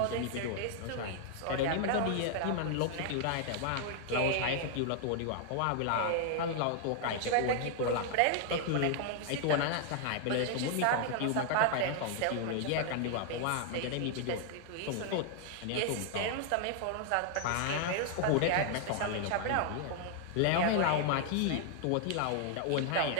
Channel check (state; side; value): different; both; correlation 0.00